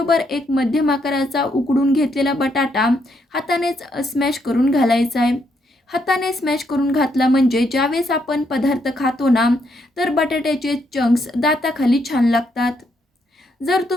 एक मध्यम आकाराचा उकडून घेतलेला बटाटा हातानेच स्मॅश करून घालायचा आहे. हाताने स्मॅश करून घातला म्हणजे ज्यावेळेस आपण पदार्थ खातो ना, तर बटाट्याचे चंक्स दाताखाली छान लागतात. जर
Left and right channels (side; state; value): both; normal; correlation 0.76